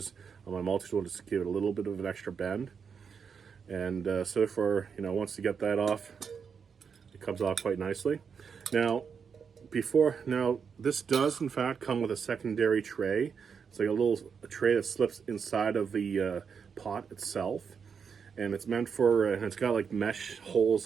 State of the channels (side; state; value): left; quieter; 6.4 dB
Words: on my multi-tool just to give it a little bit of an extra bend. And so for, once you get that off, it comes off quite nicely. Now, this does in fact come with a secondary tray It's like a tray that slips inside of the pot itself, and it's meant for, and it's got like mesh holes